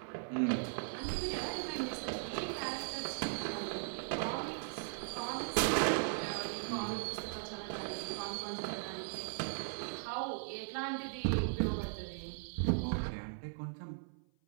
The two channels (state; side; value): silent; left; 52 dB below the other